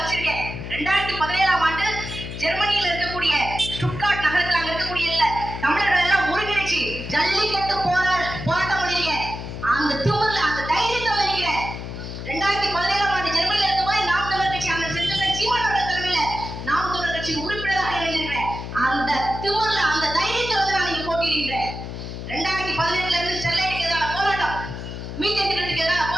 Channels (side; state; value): left; noise; hum, 8 dB below the sound